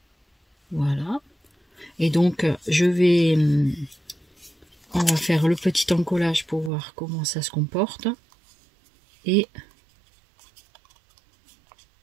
Voilà. Et donc je vais... on va faire le petit encollage pour voir comment ça se comporte. Et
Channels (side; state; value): left; drops out; at 6.7 s